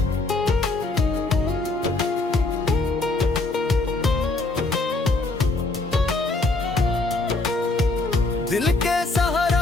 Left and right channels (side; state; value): right; quieter; 3.2 dB